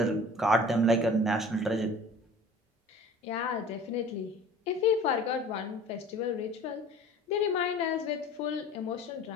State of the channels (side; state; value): both; normal; correlation 0.44